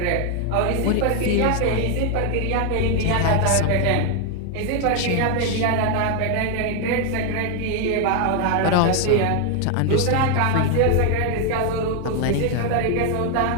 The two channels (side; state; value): both; different; correlation 0.00